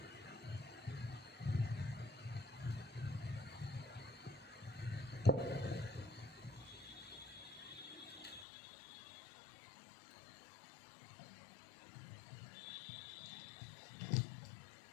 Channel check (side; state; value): right; drops out; at 8.5 s